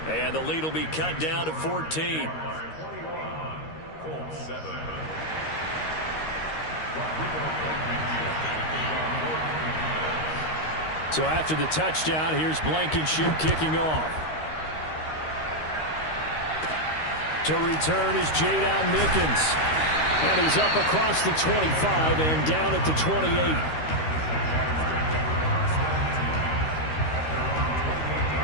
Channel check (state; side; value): late; right; 13 ms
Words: the lead will be cut down to 14. Colts 7. So after the touchdown, here's Blankenship kicking off. To return is Jadon Mickens. And he's up across the 25 and down at the 28.